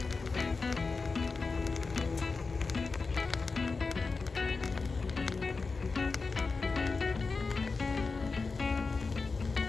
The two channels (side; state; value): right; quieter; 4.2 dB